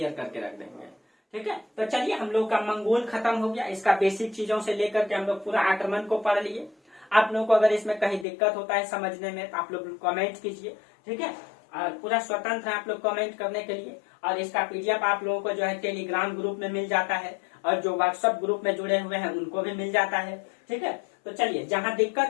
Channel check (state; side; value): drops out; right; at 8.2 s